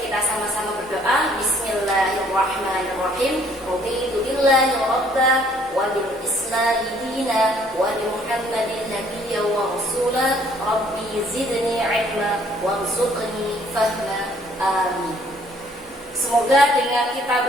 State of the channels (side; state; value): both; normal; correlation 0.61